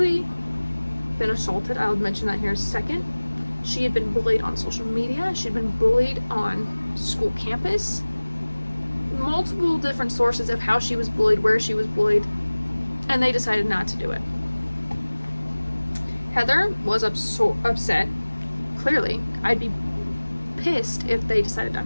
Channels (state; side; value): inverted; both; correlation -1.00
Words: been assaulted. I'll mention that here in a second. She had been bullied on social media. She'd been bullied on school campus. Multiple different sources of how she was bullied, where she was bullied, and they decided not to do it. Heather was upset. Clearly, I'd be pissed if they decided